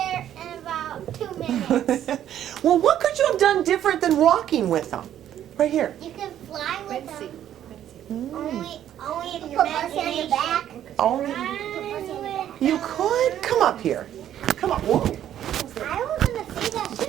in about 2 minutes. Well, what could you have done different than walking with them? Right here. You can fly with them. Mm. Only if you're on your back. Only you could? Come up here. Come on. Whoa. I was going to say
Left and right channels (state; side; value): quieter; left; 11.0 dB